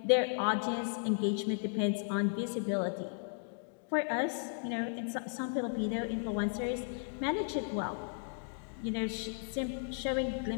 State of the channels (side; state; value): right; silent; digital silence